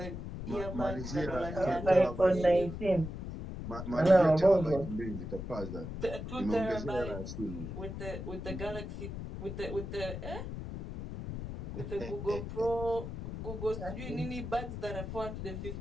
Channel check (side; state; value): left; noise; rumble, 7 dB below the sound